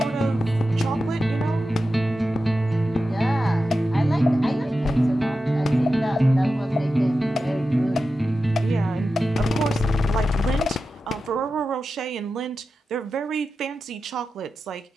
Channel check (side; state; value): both; normal; correlation 0.92